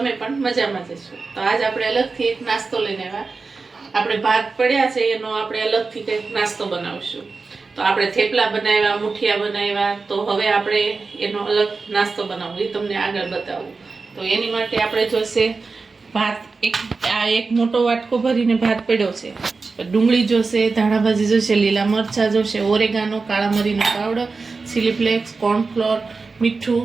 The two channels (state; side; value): quieter; left; 4.2 dB